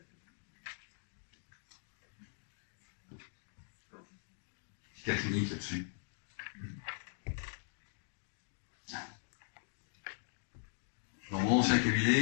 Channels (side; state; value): right; silent; digital silence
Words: Petit cas clinique là-dessus. Dans mon ancien